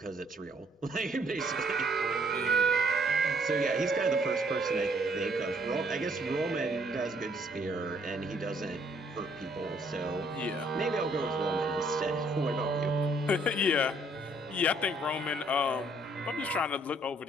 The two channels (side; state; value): both; normal; correlation 0.65